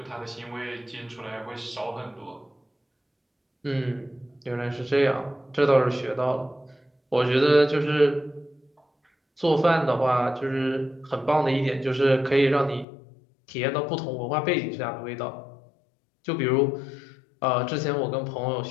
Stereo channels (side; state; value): right; drops out; at 12.9 s